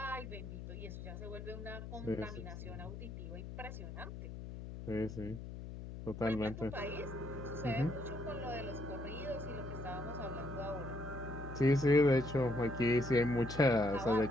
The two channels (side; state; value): left; noise; hum, 9 dB below the sound